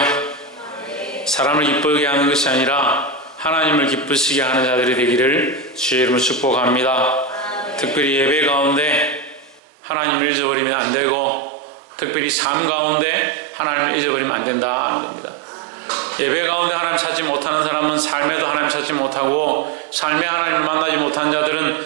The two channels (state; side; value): drops out; left; at 9.6 s